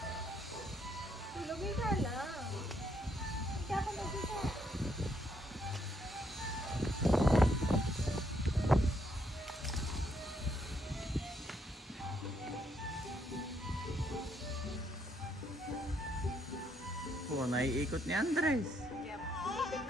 Tulogin ka lang. Hindi ako nagisa. Oh, naiikot ni Andres. Yep. Ikot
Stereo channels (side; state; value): both; normal; correlation 0.73